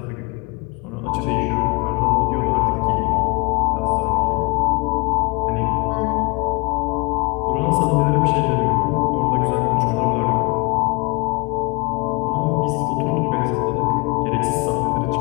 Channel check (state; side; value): quieter; right; 27.0 dB